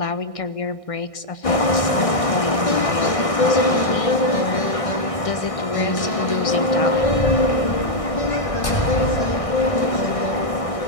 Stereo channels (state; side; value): late; right; 1.6 ms